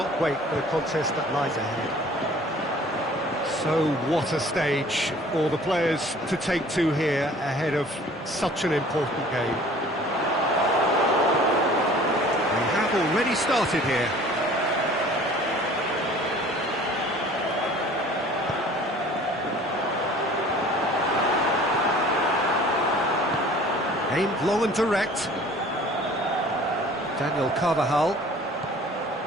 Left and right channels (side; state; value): both; normal; correlation 0.49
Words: wait for the contest that lies ahead. So what a stage for the players to take to here ahead of such an important game. We have already started here. Aimed long and direct. Daniel Carvajal.